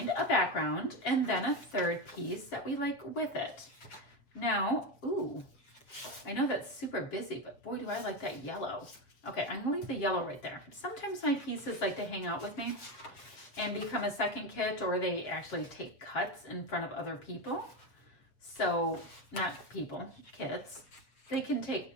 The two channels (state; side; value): late; right; 7.5 ms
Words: a background and then a third piece that we like with it. Now, ooh, I know that's super busy, but boy, do I like that yellow. Okay, I'm gonna leave the yellow right there. Sometimes my pieces like to hang out with me and become a second kit, or they actually take cuts in front of other people. So, not people, kits. They can